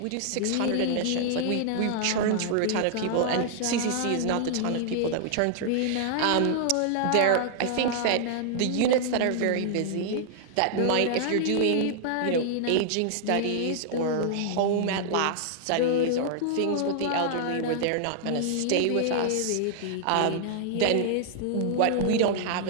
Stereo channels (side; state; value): both; different; correlation -0.01